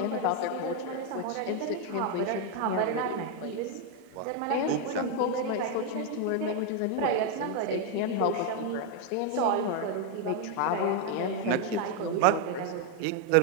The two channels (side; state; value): both; different; correlation 0.01